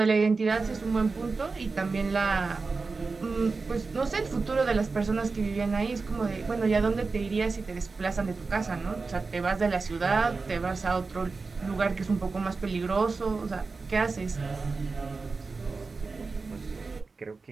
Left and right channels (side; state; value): left; quieter; 4.2 dB